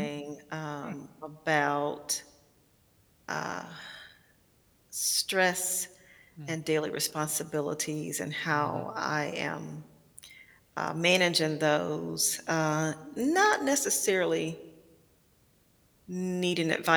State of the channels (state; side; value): identical; both; correlation 1.00